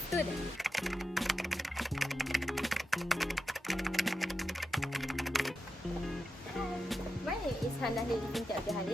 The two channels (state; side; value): normal; both; correlation 0.89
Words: student. My name is Hannah Lili Binti Abdul